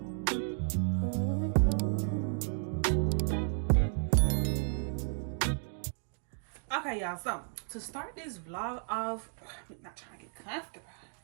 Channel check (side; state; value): left; silent; 56 dB below the other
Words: Okay, y'all. So to start this vlog off, I'm not trying to get comfortable.